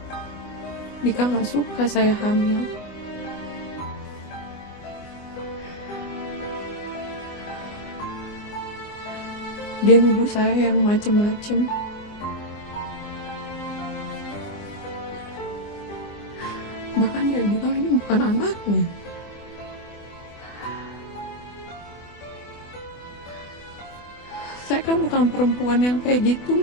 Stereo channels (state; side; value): late; right; 24 ms